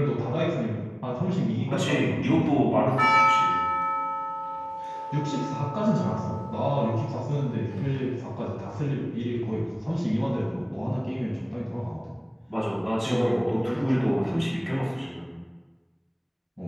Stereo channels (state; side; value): identical; both; correlation 1.00